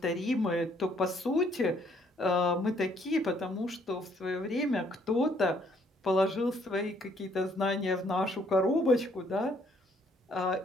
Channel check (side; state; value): both; normal; correlation 0.66